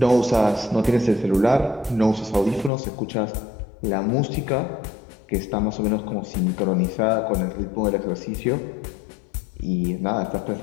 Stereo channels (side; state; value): right; drops out; at 2.7 s